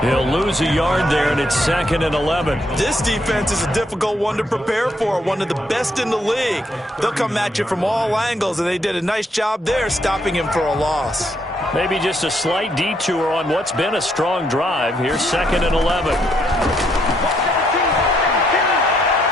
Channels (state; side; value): normal; both; correlation 0.74